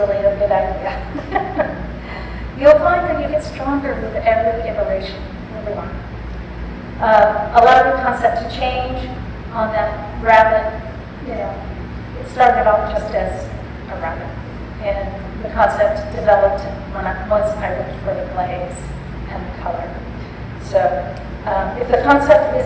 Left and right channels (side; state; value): both; identical; correlation 1.00